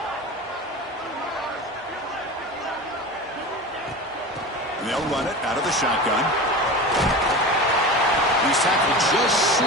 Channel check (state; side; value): normal; both; correlation 0.30